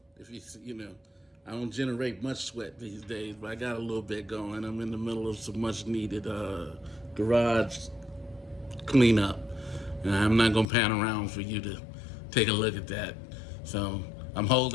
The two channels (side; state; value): right; drops out; at 10.7 s